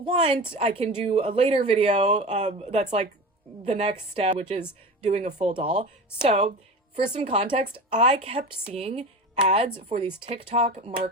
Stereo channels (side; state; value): both; normal; correlation 0.30